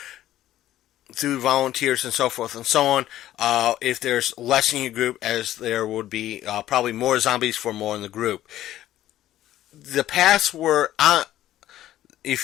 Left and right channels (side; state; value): right; quieter; 13.4 dB